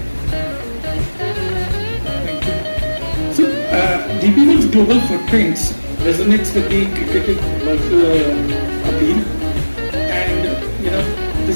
So, DP World's global footprints resonates with the cricket appeal, and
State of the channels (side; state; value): both; inverted; correlation -1.00